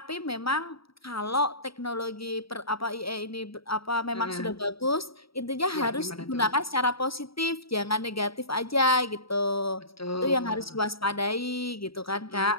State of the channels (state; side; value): late; right; 0.75 ms